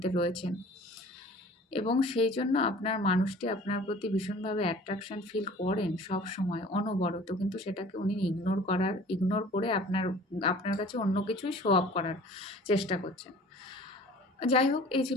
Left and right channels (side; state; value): both; normal; correlation 0.47